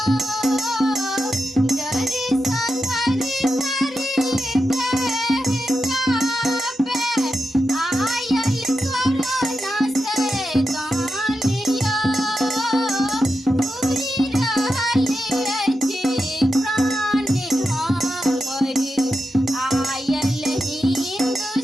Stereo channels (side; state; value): both; normal; correlation 0.88